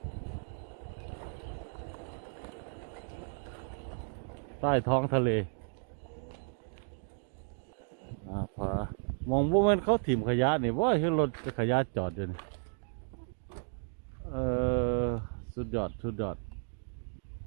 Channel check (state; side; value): silent; left; 55 dB below the other